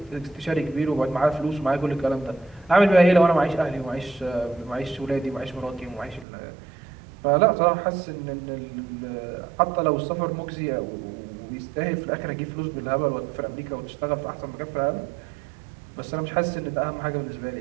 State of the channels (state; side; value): drops out; left; at 6.2 s